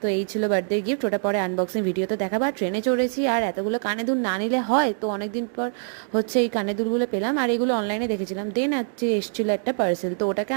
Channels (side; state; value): left; silent; digital silence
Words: তো এই ছিল বার্থডে গিফট, ওটা পরে আনবক্সিং ভিডিওতে দেখাবো। আর ট্রেনে চড়েছি আর এতগুলো কানে দুল না নিলে হয়, তো অনেকদিন পর হচ্ছে এই কানে দুলগুলো পেলাম, আর এগুলো অনলাইনে দেখেছিলাম। দেন হচ্ছে এসেছিলো একটা পার্সেল, তো ওটাকে